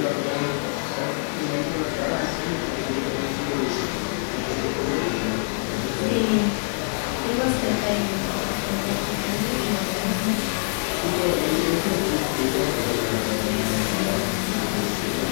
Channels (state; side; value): silent; right; digital silence